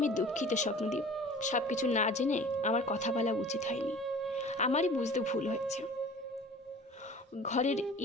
দুঃখিত স্বপ্নদীপ। সব কিছু না জেনে আমার কথা বলা উচিত হয়নি, আমারই বুঝতে ভুল হয়েছে। ঘরের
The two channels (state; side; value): normal; both; correlation 0.44